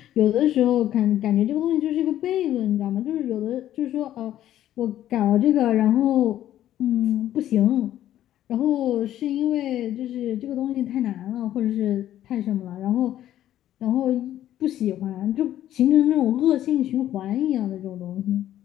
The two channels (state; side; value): quieter; right; 12.4 dB